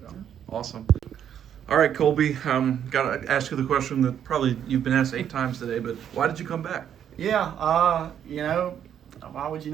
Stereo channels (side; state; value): left; quieter; 9.3 dB